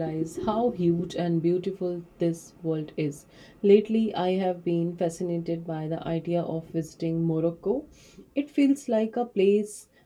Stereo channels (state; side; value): identical; both; correlation 1.00